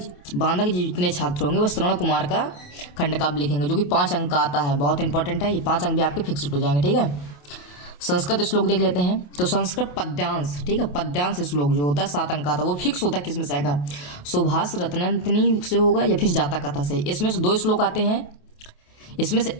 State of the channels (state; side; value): late; right; 28 ms